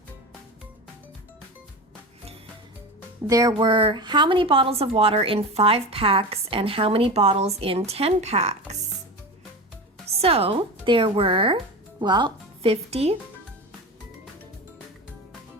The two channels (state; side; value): normal; both; correlation 0.26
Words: There were how many bottles of water in 5 packs and how many bottles in 10 packs? So there were, well, 50